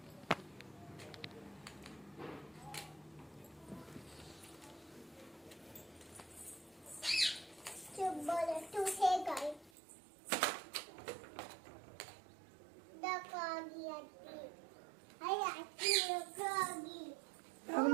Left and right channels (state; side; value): drops out; left; at 9.7 s